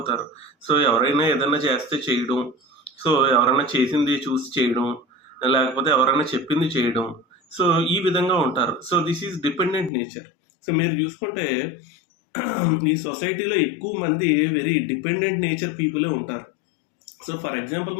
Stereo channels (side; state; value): right; drops out; at 9.9 s